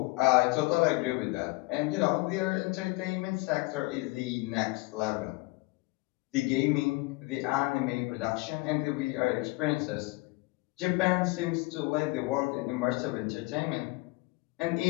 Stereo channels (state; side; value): quieter; right; 23.8 dB